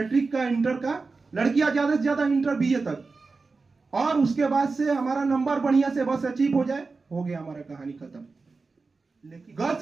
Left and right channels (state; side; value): quieter; left; 4.1 dB